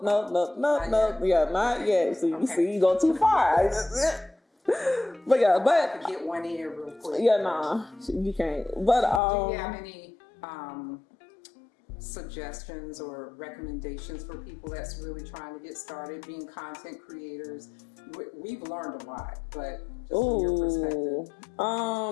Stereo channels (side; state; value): right; drops out; at 9.2 s